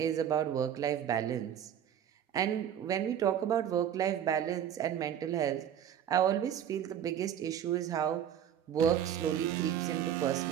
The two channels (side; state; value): left; quieter; 9.7 dB